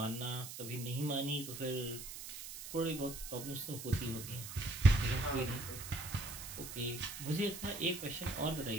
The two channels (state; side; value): noise; right; hiss, 9 dB below the sound